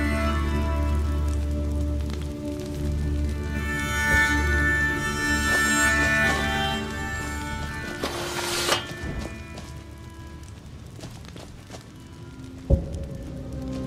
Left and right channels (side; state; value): both; identical; correlation 1.00